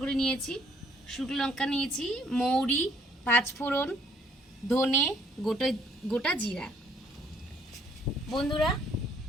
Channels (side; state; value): both; normal; correlation 0.64